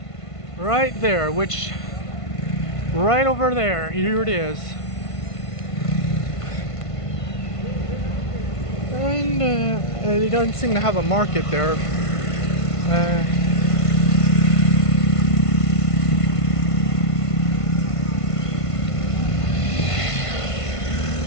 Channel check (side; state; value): right; late; 1.5 ms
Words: Right there, which right over there. Here it is. And they don't seem to have a market there.